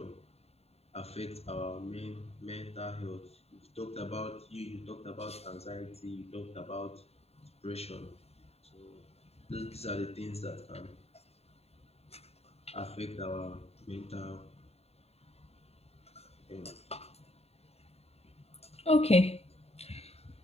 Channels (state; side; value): late; right; 0.30 ms